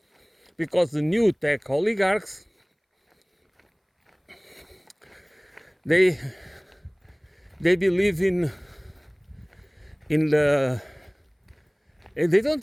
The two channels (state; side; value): identical; both; correlation 1.00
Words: because the new tech oligarchs, they believe in the, they don't